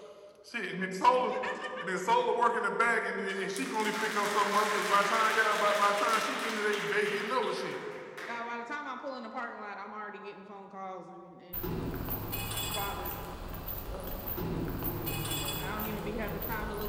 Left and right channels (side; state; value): both; identical; correlation 1.00